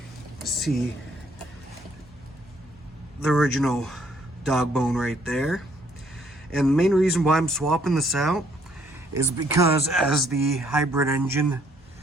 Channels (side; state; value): both; normal; correlation 0.66